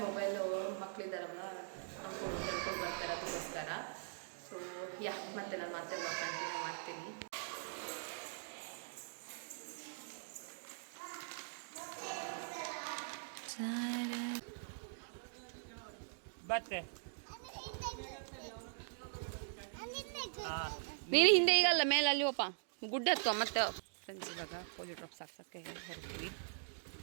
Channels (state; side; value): silent; left; digital silence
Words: ಮೊಬೈಲು ಮಕ್ಕಳಿದ್ದಾರಲ್ಲ ನೋಡ್ಕೊಂಡು ತಿಳ್ಕೊಂಡು ಬರ್ತಾರೆ, ಅದಕ್ಕೋಸ್ಕರ. ಸೊ ಮತ್ತೆ ನಾನು ಮತ್ತೆ ಬ್ಲಾಗ್ ಕಂಟಿನ್ಯೂ ಮಾಡ್ತೀನಿ. ಬತ್ತೆ ನೀನು ಹಿಂದೆ ಈಗಲ್ಲ, ಮೇಲೆ ಅಲ್ಲಿ ಹೋಪ ಗುಡ್ಡ ಹತ್ತುವ ಮತ್ತೆ. ಫ್ರೆಂಡ್ಸ್ ಇವಾಗ ಪೋಲಿಯೋ ಡ್ರಾಪ್ಸ್ ಹಾಕ್ಸೋಕ್ಕೆ ಹೊರಡ್ತೀವಿ,